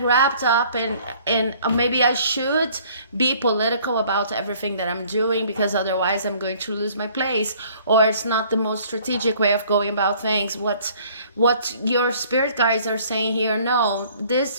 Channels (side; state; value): both; inverted; correlation -0.56